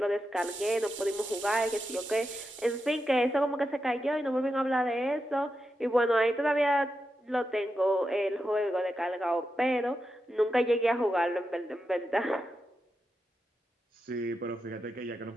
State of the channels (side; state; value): both; normal; correlation 0.88